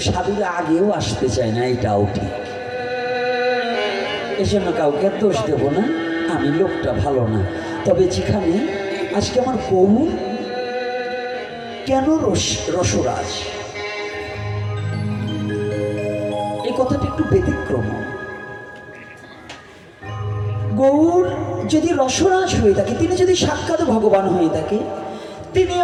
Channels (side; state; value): both; identical; correlation 1.00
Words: সাধুরা আগেও আসতে চায় না, এটাও ঠিক। এই জন্য কাউকে দোষ দেব না, আমি লোকটা ভালো না। তবে যেখানে আজকে আমার গৌর কেন রসরাজ, এই কথাটা একটু ব্যতিক্রম। গৌর যদি রসরাজ হয়ে থাকে, তিনি যদি সাক্ষাৎ ভগবান হয়ে থাকে, তিনি